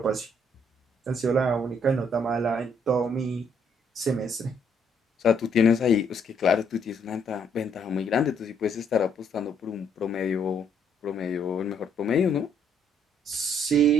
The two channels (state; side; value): normal; both; correlation 0.68